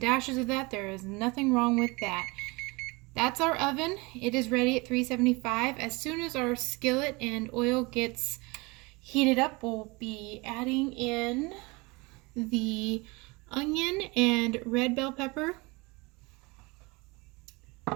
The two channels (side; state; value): left; quieter; 25.7 dB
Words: of that, there is nothing wrong with that. That's our oven. It is ready at 375. As soon as our skillet and oil gets heated up, we'll be adding in the onion and red bell pepper.